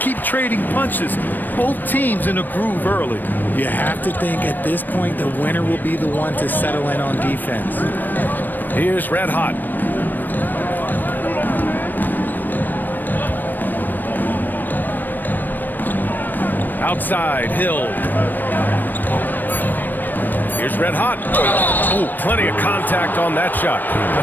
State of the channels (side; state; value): right; late; 0.090 ms